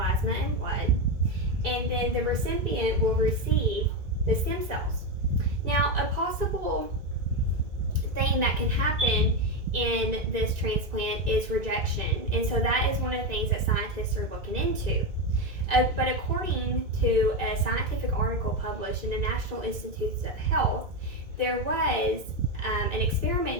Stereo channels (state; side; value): late; left; 2.2 ms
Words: and blood. And then the recipient will receive the stem cells. Now, a possible thing that can happen in this transplant is rejection, and so that is one of the things that scientists are looking into. But according to a scientific article published in the National Institutes of Health, there was an